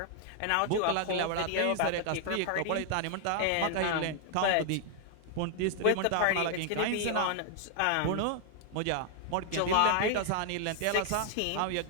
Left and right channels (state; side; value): different; both; correlation 0.00